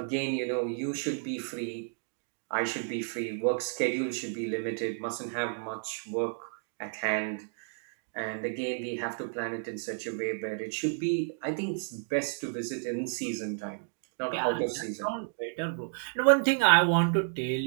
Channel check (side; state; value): left; silent; digital silence